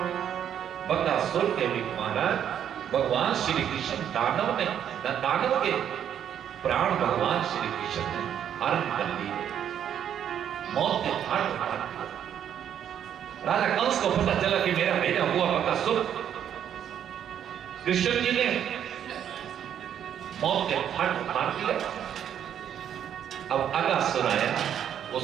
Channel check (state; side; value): quieter; left; 9.4 dB